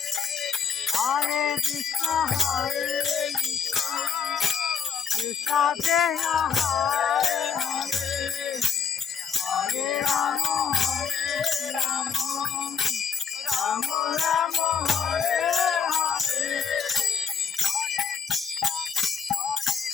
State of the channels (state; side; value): quieter; right; 6.6 dB